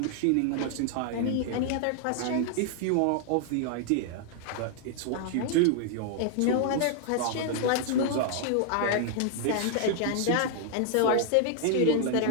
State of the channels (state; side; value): different; both; correlation 0.00